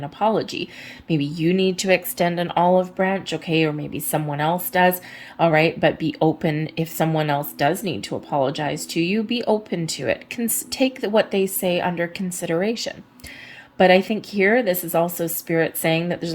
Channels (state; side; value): identical; both; correlation 1.00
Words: apology. Maybe you need to extend an olive branch, okay, or maybe someone else does, all right, but be open. If someone else does need to apologize to you, be open to it. Take what they say under consideration. But I think here, this is also Spirit saying that there's